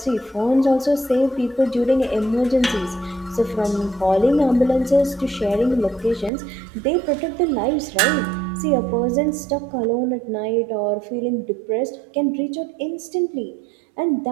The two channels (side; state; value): left; drops out; at 6.3 s